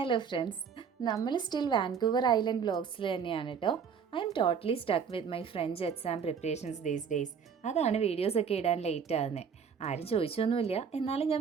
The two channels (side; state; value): left; quieter; 6.7 dB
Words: friends, നമ്മൾ still Vancouver island വ്ലോഗ്സിൽ തന്നെയാണ് കേട്ടോ. I am totally stuck with my French exam preparations these days. അതാണ് വീഡിയോസൊക്കെ ഇടാൻ ലേറ്റ് ആകുന്നത്. ആരും ചോദിച്ചൊന്നുമില്ല, എന്നാലും